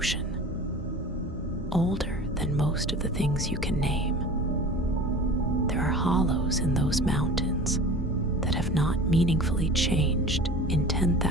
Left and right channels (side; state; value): both; normal; correlation 0.39